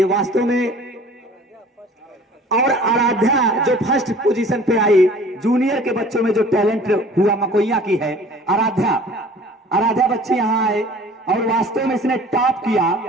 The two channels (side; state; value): both; normal; correlation 0.48